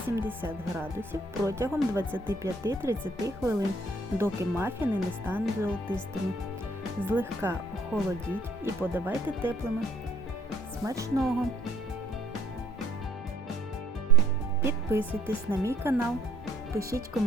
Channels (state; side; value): normal; both; correlation 0.62